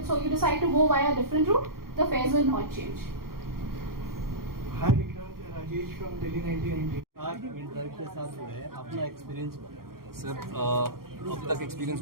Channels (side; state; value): left; late; 0.93 ms